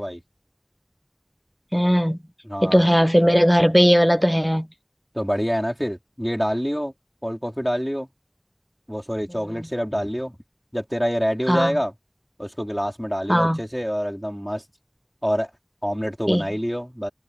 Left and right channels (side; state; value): both; identical; correlation 1.00